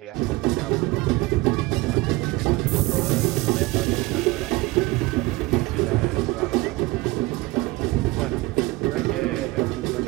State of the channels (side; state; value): left; quieter; 21.2 dB